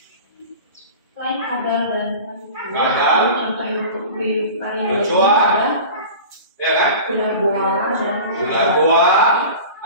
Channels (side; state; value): both; inverted; correlation -0.36